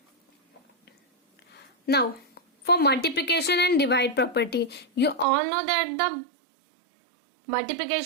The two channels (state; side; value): drops out; left; at 5.2 s